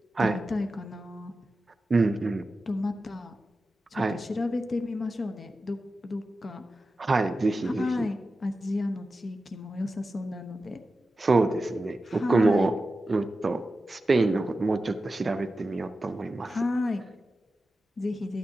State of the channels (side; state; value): both; normal; correlation 0.92